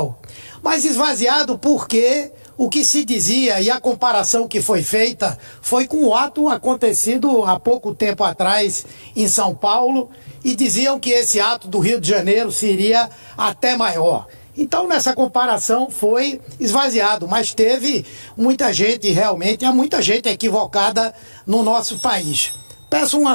mas esvaziado porque o que se dizia e a comparação que foi feita foi com o ato acontecido há pouco tempo atrás em São Paulo, e diziam que esse ato do Rio de Janeiro seria até maior. Então, nessa comparação foi esvaziado, mas teve muita gente, realmente, há muita gente equivocada no nosso país. Peço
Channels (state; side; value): inverted; both; correlation -1.00